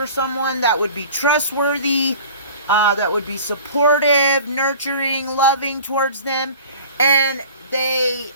someone that would be trustworthy, that would be supportive, nurturing, loving towards them, and they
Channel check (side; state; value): both; inverted; correlation -0.43